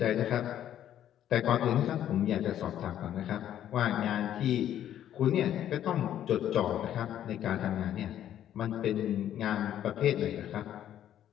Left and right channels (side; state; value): right; quieter; 11.1 dB